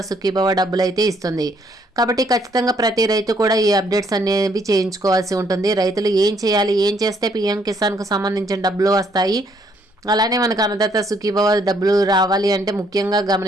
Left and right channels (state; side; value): normal; both; correlation 0.68